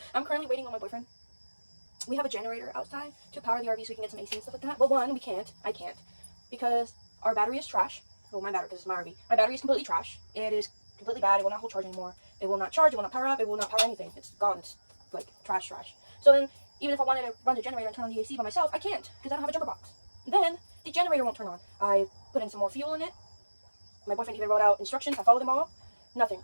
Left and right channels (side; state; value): both; inverted; correlation -1.00